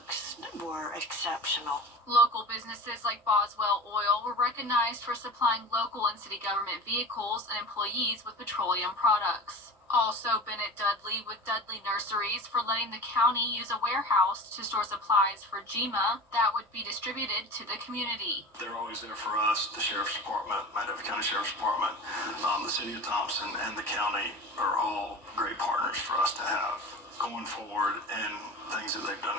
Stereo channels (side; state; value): both; normal; correlation 0.35